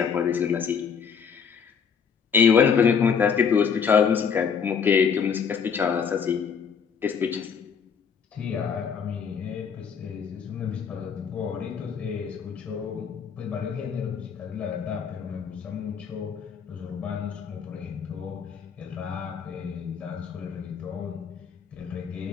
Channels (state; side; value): quieter; right; 6.7 dB